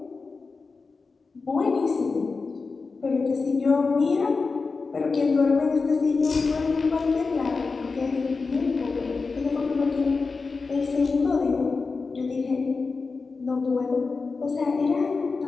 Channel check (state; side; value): quieter; right; 4.3 dB